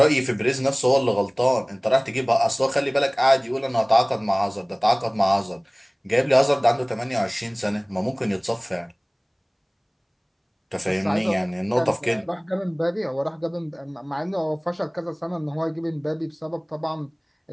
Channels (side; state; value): both; identical; correlation 1.00